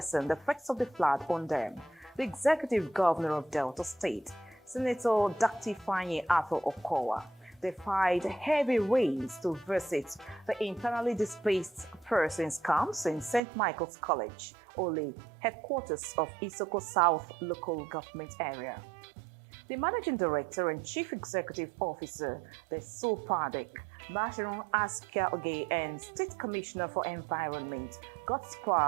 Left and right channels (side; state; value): left; drops out; at 13.4 s